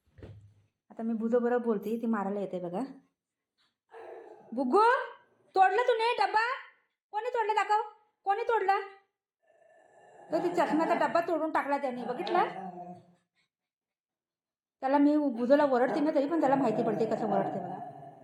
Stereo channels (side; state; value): both; identical; correlation 1.00